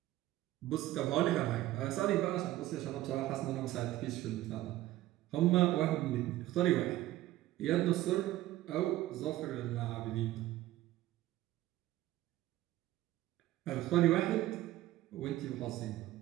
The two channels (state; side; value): quieter; left; 15.3 dB